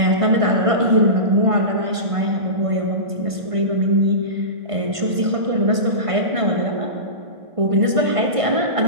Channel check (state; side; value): late; left; 1.5 ms